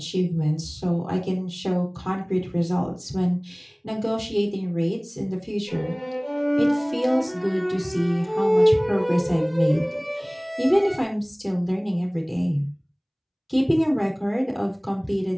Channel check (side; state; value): both; identical; correlation 1.00